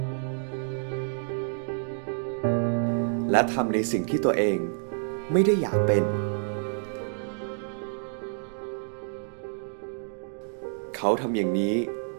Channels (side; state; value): left; silent; digital silence